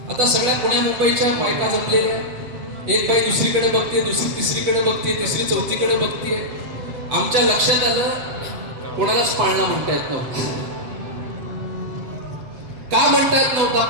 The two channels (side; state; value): left; late; 8.1 ms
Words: आता सगळ्या पुण्या मुंबईच्या बायका जमलेल्या, एक बाई दुसरीकडे बघते, दुसरी तिसरीकडे बघते, तिसरी चौथीकडे बघते. आमच्या लक्षात आलं कोणालाच पाळणा म्हणता येत नव्हता. का म्हणता येत नव्हता